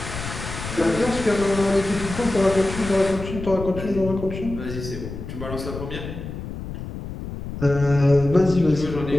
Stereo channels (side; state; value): left; noise; rumble, 9 dB below the sound